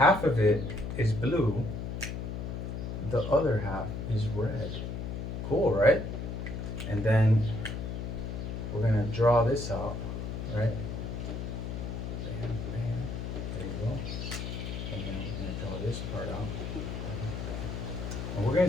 of it is blue, the other half is red. Cool, right? And then we're gonna draw this out, right? Bam, bam. There you go. And then we're gonna draw this part out. And we're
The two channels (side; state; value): left; noise; hum, 5 dB below the sound